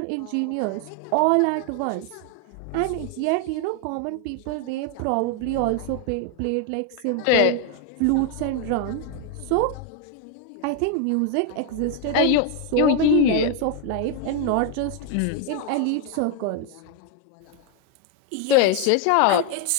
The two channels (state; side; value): different; both; correlation 0.01